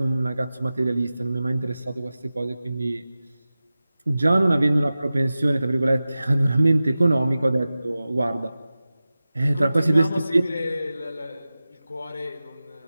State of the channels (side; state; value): both; inverted; correlation -0.96